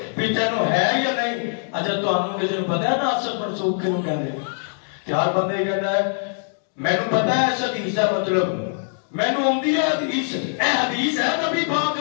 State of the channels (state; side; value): silent; right; digital silence